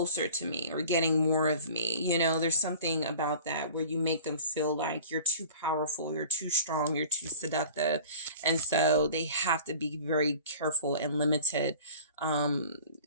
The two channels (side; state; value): both; inverted; correlation -0.43